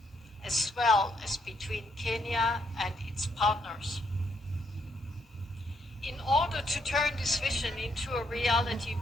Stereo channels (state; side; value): normal; both; correlation 0.74